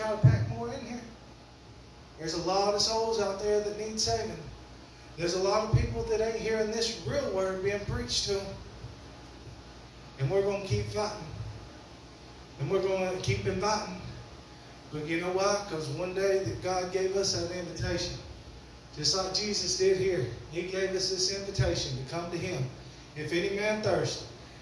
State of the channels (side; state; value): both; identical; correlation 1.00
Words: try to pack more in here. There's a lot of souls out there that need saving. There's a lot of people that ain't hearing this real word being preached to them. And we're going to keep fighting. And we're going to keep inviting. But you know why? Because one day that God gave us an invitation. Just like Jesus did here. He gave us this invitation to come to him. If any man thirst.